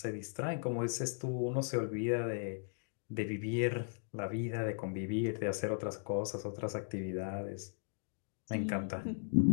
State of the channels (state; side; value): silent; right; digital silence